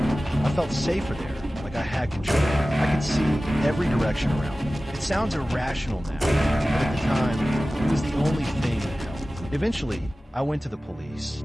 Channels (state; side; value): normal; both; correlation 0.96